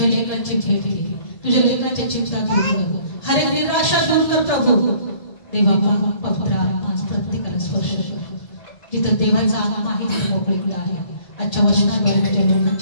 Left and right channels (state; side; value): late; right; 2.0 ms